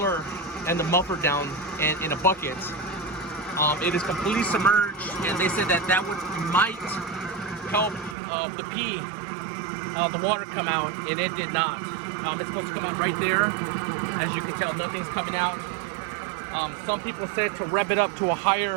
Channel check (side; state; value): left; drops out; at 8.2 s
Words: and the muffler down in a bucket. It is completely submerged, and they said that might help the water come out, and it did not. It's supposed to come out right there. As you can tell, nothing's coming out. Some people said to rev it up to a